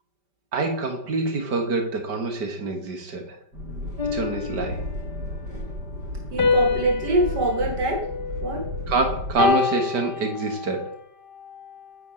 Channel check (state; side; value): late; left; 5.1 ms